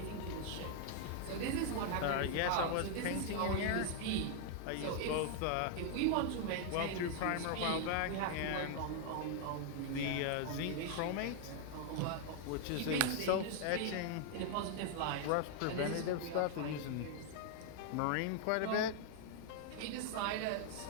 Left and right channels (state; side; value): different; both; correlation 0.00